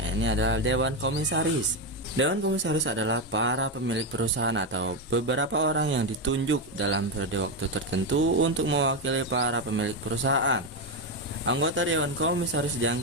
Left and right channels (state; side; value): normal; both; correlation 0.09